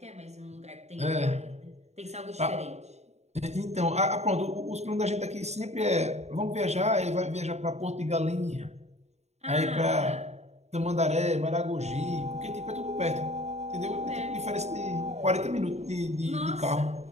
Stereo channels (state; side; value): late; left; 0.32 ms